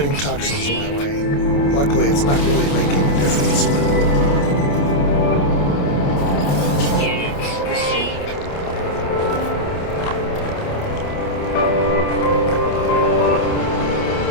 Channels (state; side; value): late; right; 28 ms